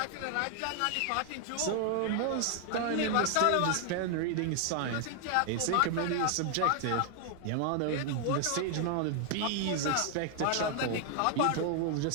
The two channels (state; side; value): different; both; correlation 0.00